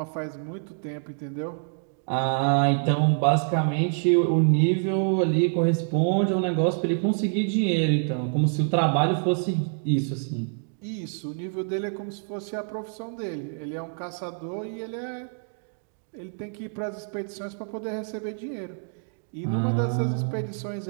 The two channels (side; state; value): left; silent; digital silence